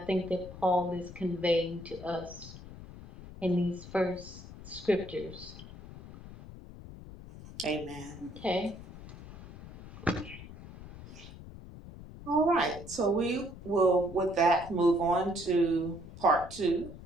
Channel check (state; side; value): noise; left; rumble, 15 dB below the sound